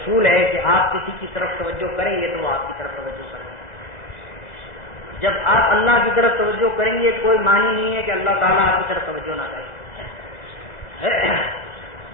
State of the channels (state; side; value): late; right; 2.0 ms